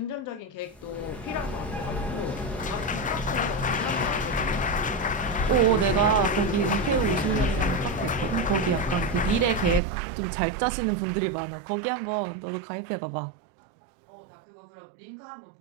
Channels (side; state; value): left; drops out; at 9.8 s